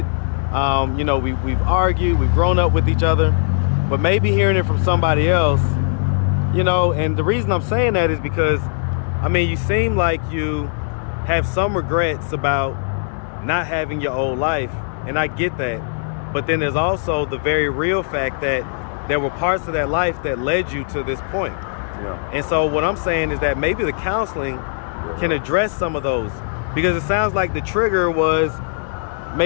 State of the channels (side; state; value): right; silent; 60 dB below the other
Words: You know, we've argued, we've grown up with each other, but maybe hearing it from somebody else, you know, and the reason I'm saying that is because, I mean, you seem like you have some regrets about not having your old life, and I get that, but then there's also the very real fact that there were parts of that life that led you to this point. Yeah. And so what I'm saying is that maybe the counseling can address some of those, because it sounds like the trigger was